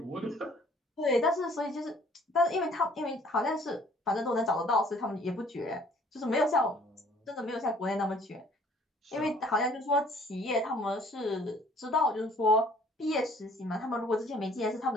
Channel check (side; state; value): both; normal; correlation 0.56